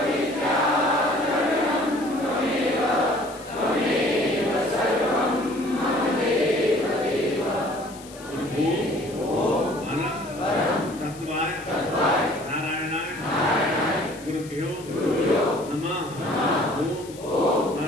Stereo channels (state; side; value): noise; left; hiss, 19 dB below the sound